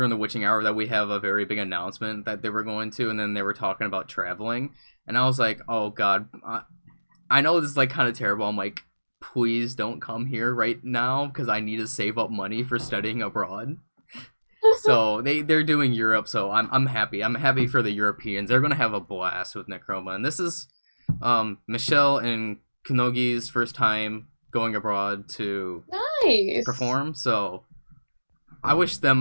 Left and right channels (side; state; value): both; inverted; correlation -1.00